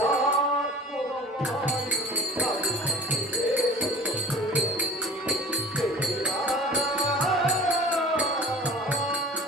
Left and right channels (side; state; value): both; normal; correlation 0.42